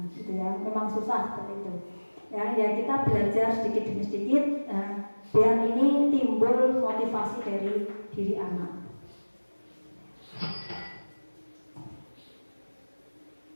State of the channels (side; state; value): both; inverted; correlation -1.00